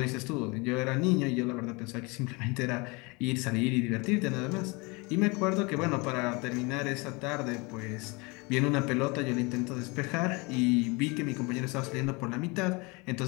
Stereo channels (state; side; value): quieter; right; 27.6 dB